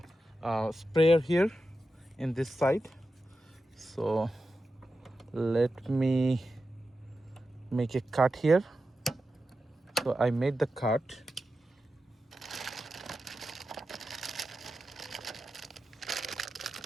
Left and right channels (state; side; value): normal; both; correlation 0.91